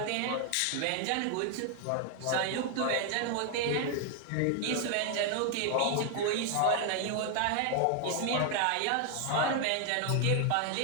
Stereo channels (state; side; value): different; both; correlation 0.00